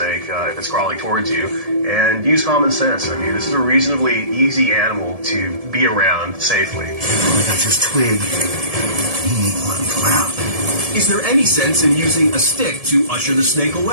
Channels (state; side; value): late; left; 1.7 ms